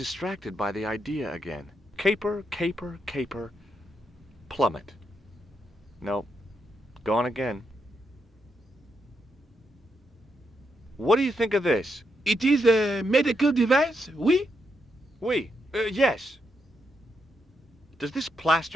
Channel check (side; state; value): both; normal; correlation 0.81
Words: by the idea again. Caper, caper, caper, plummet. No, gone again. What do you think of this? It is a medical device, oui? Oui, yes. Does this